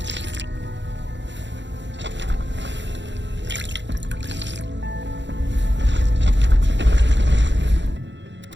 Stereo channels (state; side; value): late; left; 0.52 ms